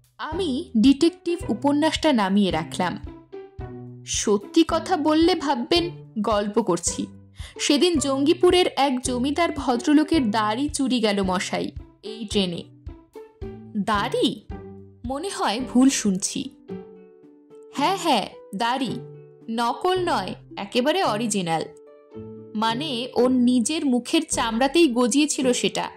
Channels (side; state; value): both; identical; correlation 1.00